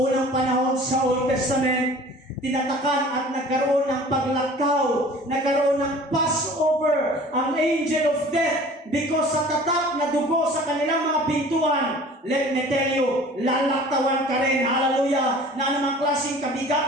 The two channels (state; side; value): normal; both; correlation 0.46